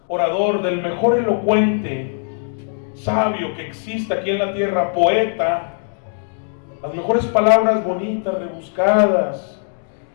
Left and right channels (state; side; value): silent; right; digital silence